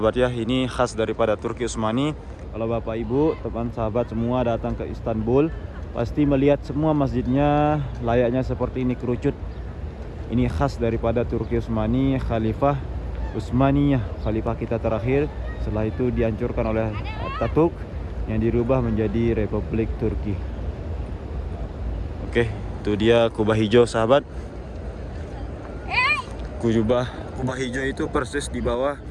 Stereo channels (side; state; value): both; identical; correlation 1.00